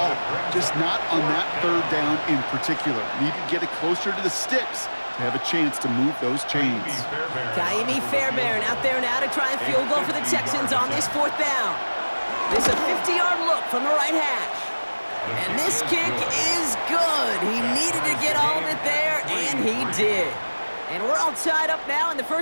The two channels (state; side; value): inverted; both; correlation -1.00